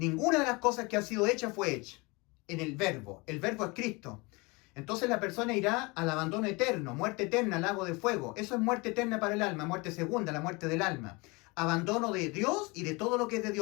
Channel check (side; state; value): right; quieter; 26.5 dB